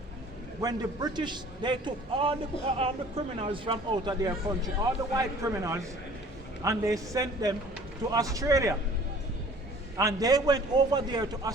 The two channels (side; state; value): both; normal; correlation 0.50